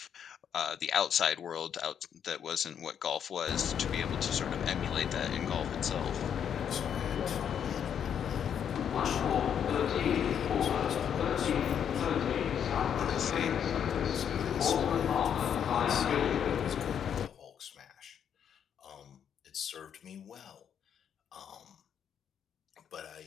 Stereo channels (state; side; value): quieter; right; 8.5 dB